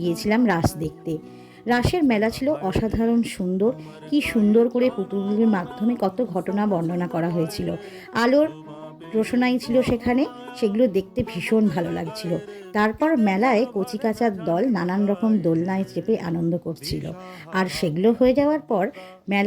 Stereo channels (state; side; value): identical; both; correlation 1.00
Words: রাস দেখতে। রাসের মেলা ছিল অসাধারণ সুন্দর। কি সুন্দর করে পুতুলের মাধ্যমে কত ঘটনা বর্ণনা করা হয়েছিল। আলোর রোশনাই ছিল সেখানে, সেগুলো দেখতে ভীষণ ভালো লাগছিল। তারপর মেলায় কচিকাঁচার দল নানান রকম দোলনায় চেপে আনন্দ করছিল। আর সেগুলো হয়ে যাওয়ার পর